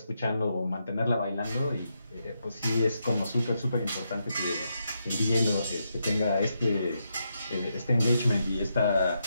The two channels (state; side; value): inverted; both; correlation -0.83